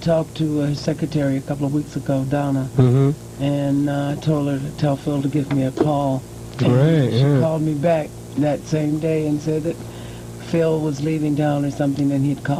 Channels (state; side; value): identical; both; correlation 1.00